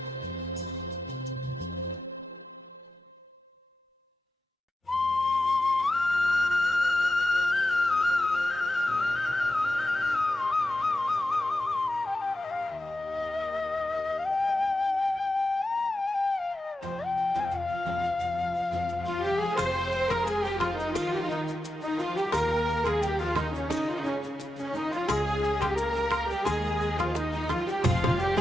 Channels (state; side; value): normal; both; correlation 0.89